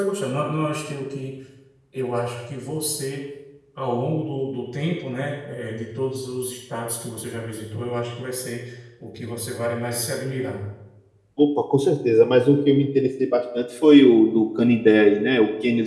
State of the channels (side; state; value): both; identical; correlation 1.00